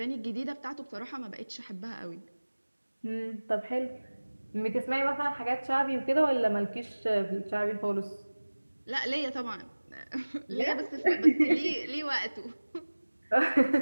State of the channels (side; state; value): both; inverted; correlation -1.00